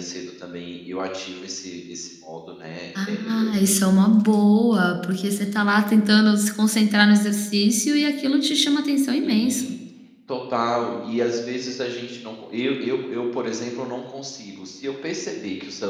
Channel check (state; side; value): identical; both; correlation 1.00